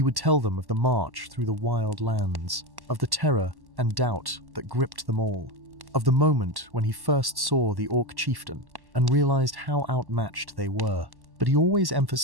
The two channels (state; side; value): late; left; 1.1 ms